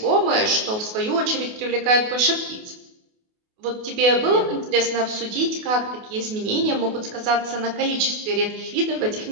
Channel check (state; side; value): late; left; 28 ms